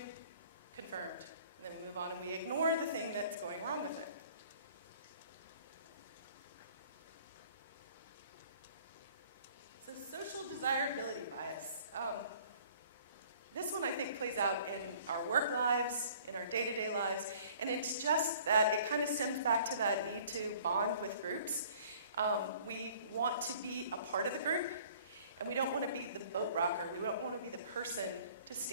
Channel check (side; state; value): both; inverted; correlation -0.53